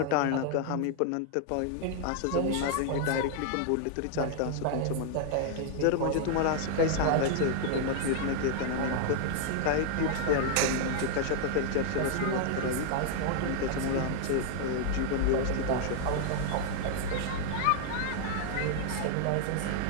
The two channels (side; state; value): both; different; correlation -0.01